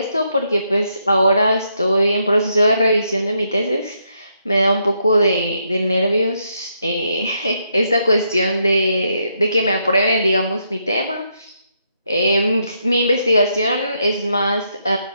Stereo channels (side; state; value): both; inverted; correlation -0.78